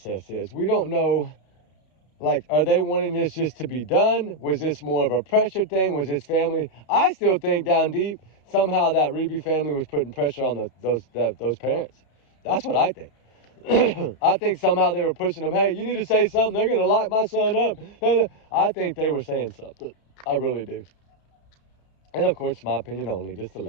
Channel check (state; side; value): late; right; 32 ms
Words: is. We don't know, like, are they wanting this just to be done? Was this more of a pressure thing? Was this family? I still think down deep, somehow that Reeby family was putting pressure on those parents. That's what I think. I think somehow they were pushing them, hey, you need to say something. They're going to lock my son up. I think they were saying something. I really do. And, of course, my opinion only, just